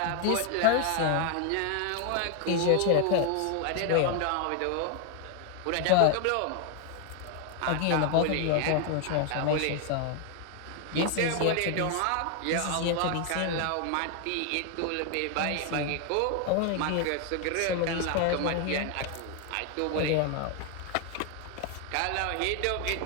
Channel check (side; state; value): both; different; correlation 0.00